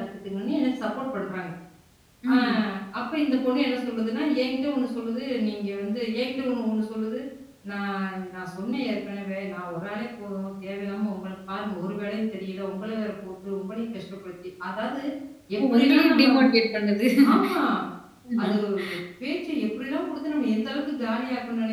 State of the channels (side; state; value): both; identical; correlation 1.00